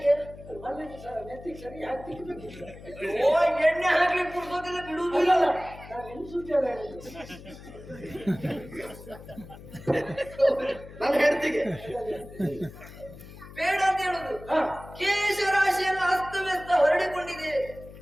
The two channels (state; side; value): noise; left; hum, 16 dB below the sound